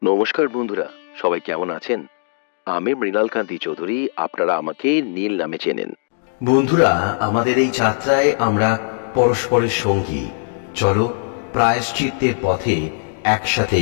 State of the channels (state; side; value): silent; right; digital silence